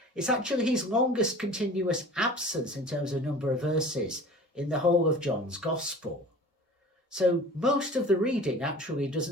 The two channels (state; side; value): normal; both; correlation 0.42